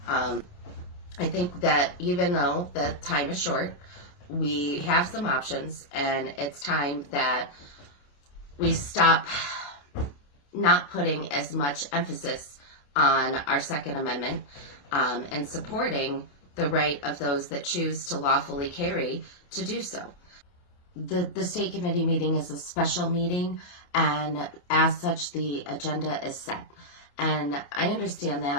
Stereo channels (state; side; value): late; right; 28 ms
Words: I think that even though the time is short, we have some options, and it's time that we stop not putting as much emphasis on our Second Amendment and supporting the right of those that choose to lawfully carry to do so. the state committee meeting is a special meeting, and as such, the agenda is set. And I understand